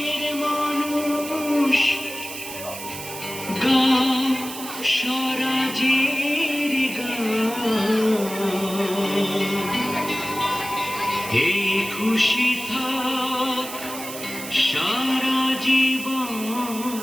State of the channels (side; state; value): right; noise; hiss, 10 dB below the sound